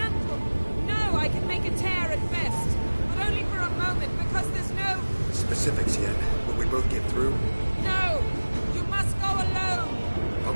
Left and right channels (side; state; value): both; inverted; correlation -1.00